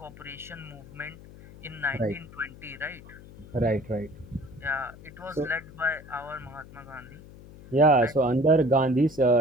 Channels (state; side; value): noise; left; hum, 18 dB below the sound